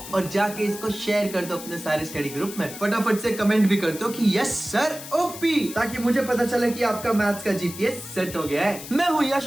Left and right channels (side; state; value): left; noise; hiss, 12 dB below the sound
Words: और जाके इसको शेयर कर दो अपने सारे स्टडी ग्रुप में। फटाफट से कमेंट भी कर दो कि यस सर ओपी, ताकि मुझे पता चले कि आपका मैथ्स का जीपीएस सेट हो गया है। मैं हूँ